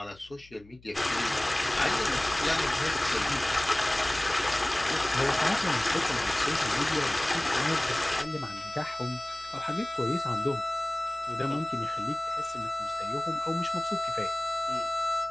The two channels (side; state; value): left; noise; hum, 25 dB below the sound